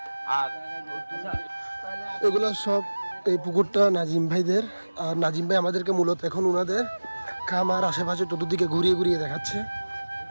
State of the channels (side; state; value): both; inverted; correlation -1.00